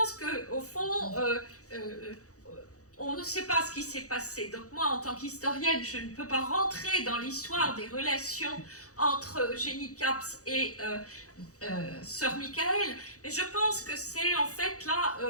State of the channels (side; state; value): right; late; 0.66 ms